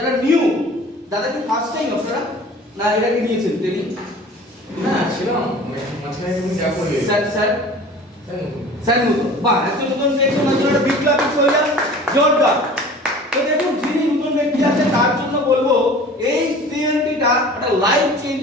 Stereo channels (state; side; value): normal; both; correlation 0.43